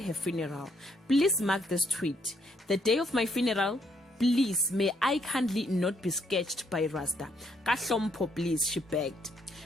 funeral. Please mark this tweet. The day of my funeral, please, may I kindly not be sketched by Rasta. Kahlompo, please, she begged.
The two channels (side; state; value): both; normal; correlation 0.72